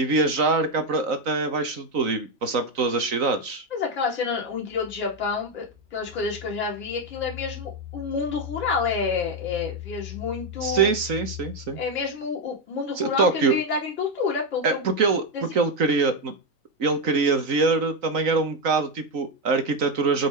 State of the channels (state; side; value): late; left; 3.9 ms